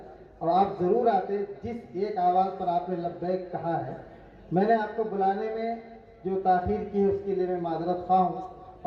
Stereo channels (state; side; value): identical; both; correlation 1.00